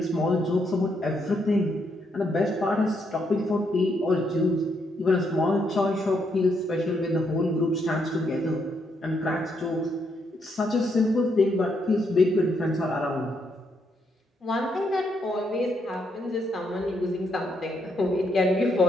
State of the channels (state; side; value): normal; both; correlation 0.76